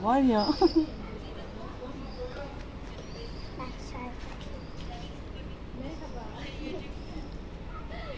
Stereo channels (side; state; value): both; identical; correlation 1.00